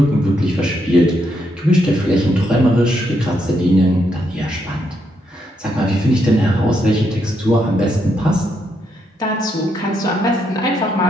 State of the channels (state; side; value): normal; both; correlation 0.78